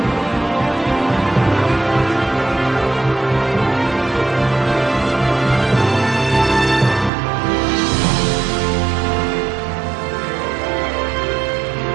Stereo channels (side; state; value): left; drops out; at 7.1 s